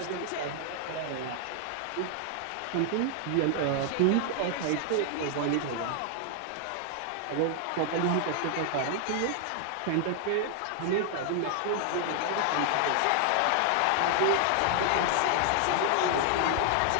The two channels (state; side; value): different; both; correlation 0.00